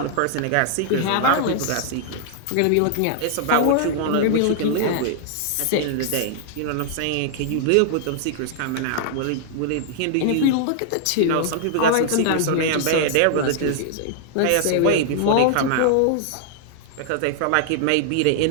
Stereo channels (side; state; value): both; different; correlation 0.00